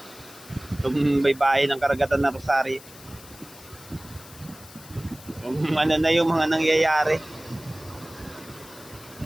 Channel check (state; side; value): noise; left; hiss, 19 dB below the sound